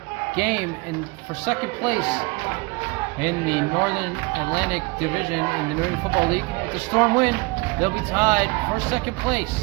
game for second place in the Northern Atlantic Division in the New England Football League. If the Storm win, they'll be tied for second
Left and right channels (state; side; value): quieter; left; 26.0 dB